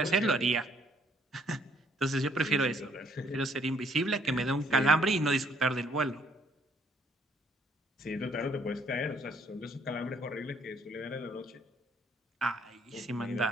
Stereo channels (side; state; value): both; normal; correlation 0.65